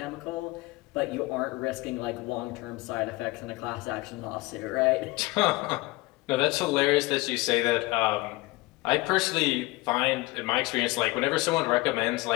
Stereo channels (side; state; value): right; quieter; 21.9 dB